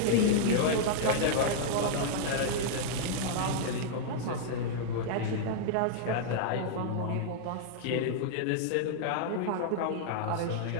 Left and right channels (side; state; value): both; different; correlation -0.01